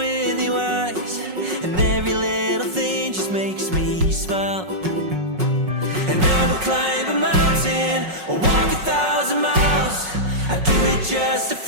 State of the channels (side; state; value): left; late; 5.4 ms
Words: your eyes, and every little thing just makes me smile. And I will climb a mountain or walk 1,000 miles. I do it just to